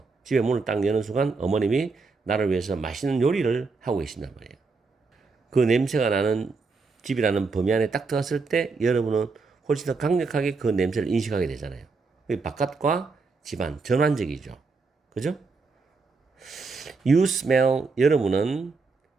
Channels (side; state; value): left; quieter; 4.3 dB